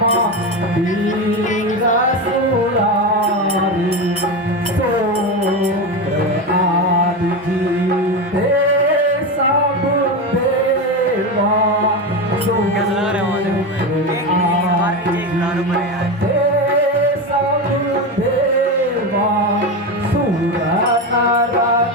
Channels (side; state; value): both; normal; correlation 0.18